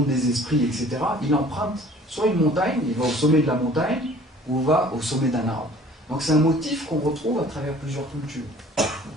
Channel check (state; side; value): normal; both; correlation 0.50